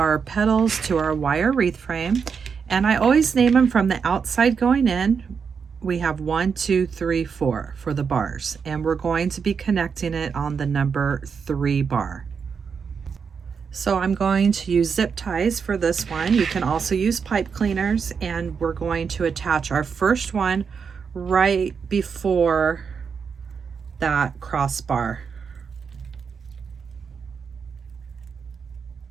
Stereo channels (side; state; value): left; quieter; 6.1 dB